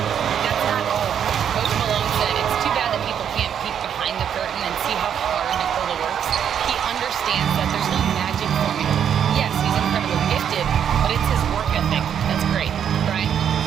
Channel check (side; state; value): left; quieter; 8.6 dB